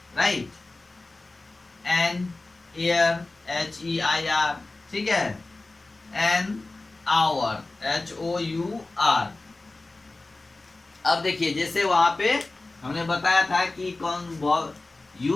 right. An air, H E I R, ठीक है। An hour, H O U R. अब देखिए जैसे वहां पे हमने बताया था कि कौन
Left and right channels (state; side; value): quieter; right; 3.2 dB